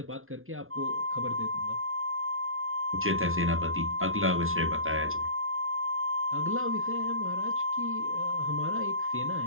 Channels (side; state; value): left; late; 0.61 ms